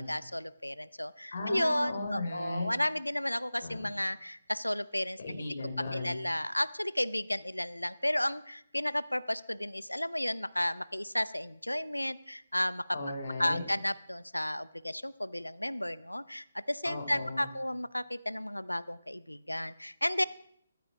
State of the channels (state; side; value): inverted; both; correlation -0.98